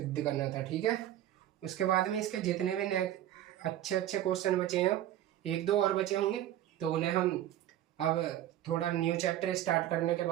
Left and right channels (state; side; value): quieter; left; 12.5 dB